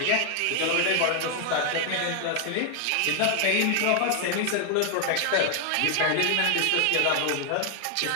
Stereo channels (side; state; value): both; different; correlation 0.00